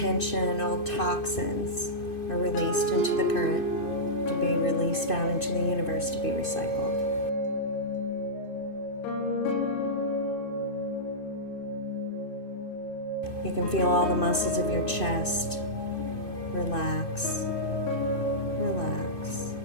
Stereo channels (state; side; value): late; right; 2.6 ms